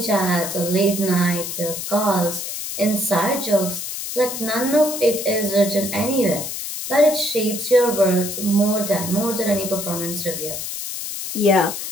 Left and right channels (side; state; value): left; noise; hiss, 6 dB below the sound